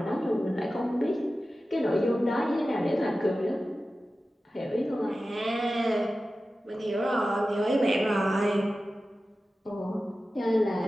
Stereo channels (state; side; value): normal; both; correlation 0.94